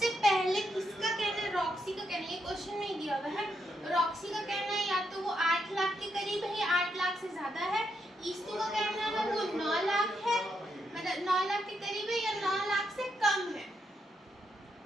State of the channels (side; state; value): both; normal; correlation 0.80